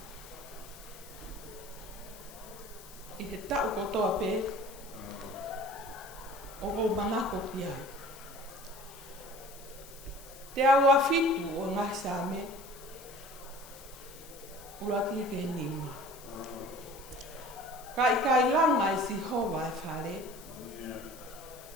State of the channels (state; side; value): noise; left; hiss, 18 dB below the sound